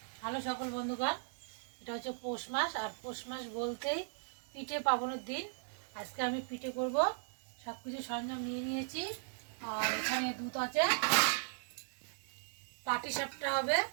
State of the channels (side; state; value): left; silent; digital silence